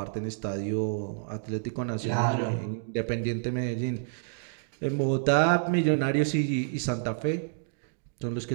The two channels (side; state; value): left; silent; digital silence